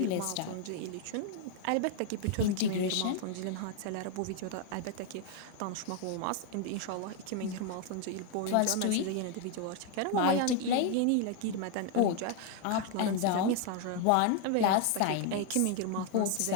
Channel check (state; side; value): different; both; correlation 0.00